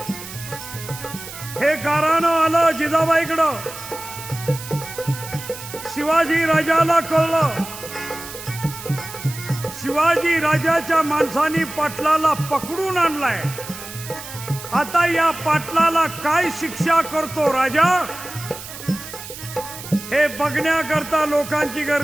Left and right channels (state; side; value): noise; right; hiss, 12 dB below the sound